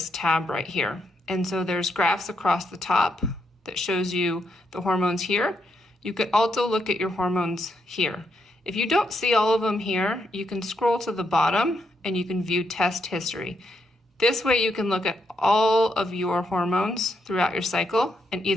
tab right here. And so there's graphs across the top that shows you the hormones here. You can also look at your hormones here. If you don't see all of them here, you can scroll to the bottom and you can view test history. This way you can look at all of your hormones throughout your cycle and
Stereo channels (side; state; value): both; normal; correlation 0.79